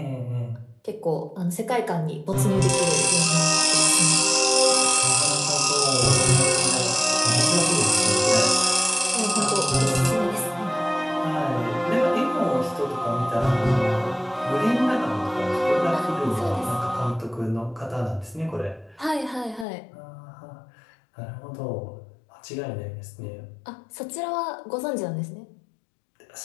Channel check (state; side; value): drops out; right; at 19.7 s